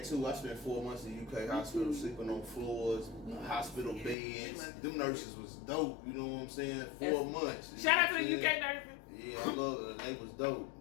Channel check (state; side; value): drops out; right; at 4.2 s